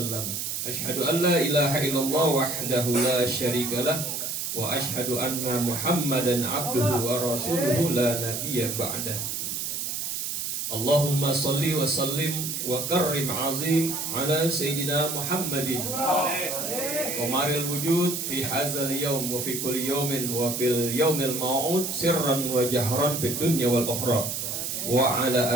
أشهد أن لا إله إلا الله وحده لا شريك له وأشهد أن محمدا عبده ورسوله لا نبي بعده. اللهم صل وسلم وكرم عظيم على سيدنا محمد قمر الوجود في هذا اليوم وفي كل يوم وفي اليوم الموعود سرا وجهرا في الدنيا والأخرى وعلى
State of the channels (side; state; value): right; noise; hiss, 3 dB below the sound